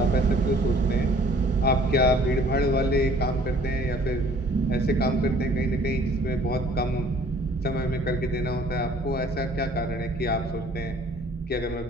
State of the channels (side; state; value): both; normal; correlation 0.55